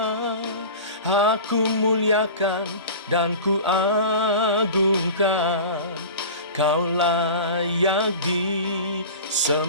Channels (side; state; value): both; inverted; correlation -0.35